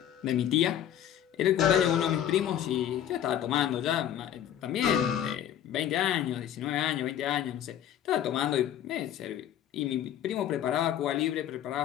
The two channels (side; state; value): right; quieter; 10.6 dB